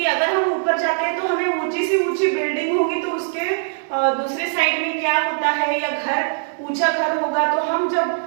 अगर हम ऊपर जाते हैं तो हमें ऊंची सी ऊंची बिल्डिंग होगी तो उसके दूसरे साइड में क्या होता है, या घर ऊंचा घर होगा तो हम जब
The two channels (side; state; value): left; silent; digital silence